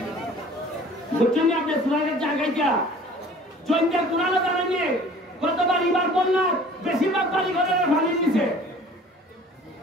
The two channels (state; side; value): normal; both; correlation 0.48